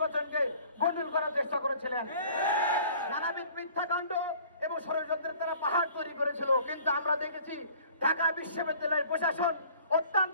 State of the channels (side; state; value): both; inverted; correlation -0.51